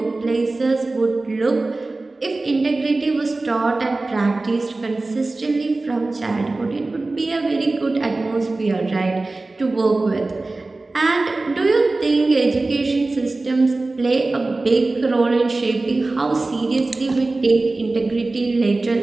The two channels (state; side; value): quieter; left; 3.2 dB